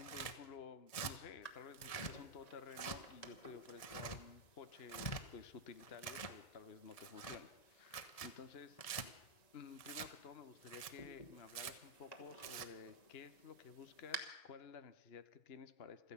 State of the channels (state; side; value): late; right; 1.8 ms